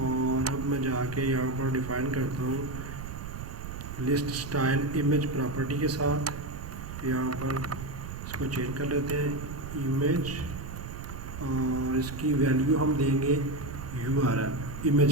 अब मैं जाके यहाँ पर डिफ़ाइन करता हूँ लिस्ट स्टाइल इमेज प्रॉपर्टी के साथ। यहाँ पर इसको चेंज कर लेते हैं इमेज और इसकी वैल्यू हम देंगे URL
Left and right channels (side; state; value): right; noise; rumble, 9 dB below the sound